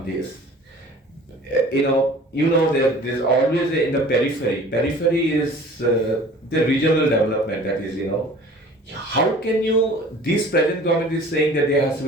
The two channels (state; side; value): normal; both; correlation 0.46